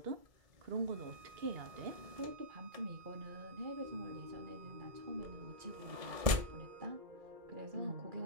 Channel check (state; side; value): late; left; 2.3 ms